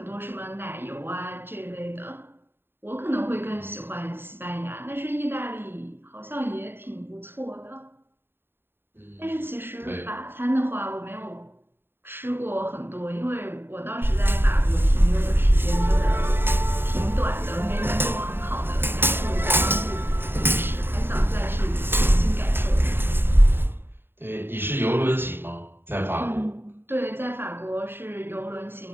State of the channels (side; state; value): left; late; 0.11 ms